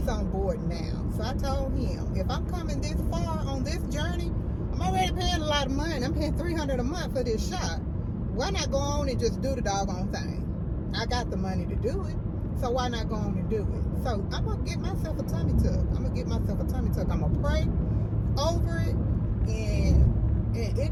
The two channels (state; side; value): identical; both; correlation 1.00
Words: on board now. So I told him, if I'm coming this far on this journey, I'm already paying a lot of money. I'm paying $300 a month for this shot. Why not go on and just do the doggone thing? I got the money to do it, so why not go on and do it? So I'm gonna get myself a tummy tuck. I'm gonna pray over it, and it